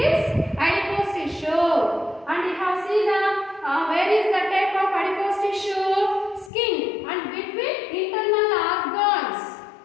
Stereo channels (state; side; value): drops out; right; at 6.5 s